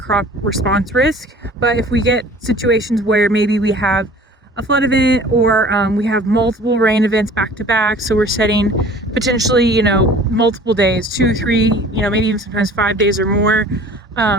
response risk. But if we get situations where maybe we have a flood event or we have multiple rain events back to back, so we're setting potentially, multiple days, 2, 3, maybe even sometimes 5 days or more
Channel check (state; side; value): normal; both; correlation 0.47